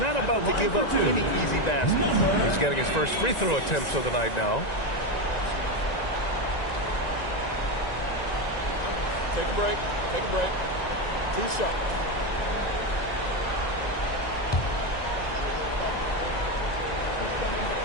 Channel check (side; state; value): right; late; 1.9 ms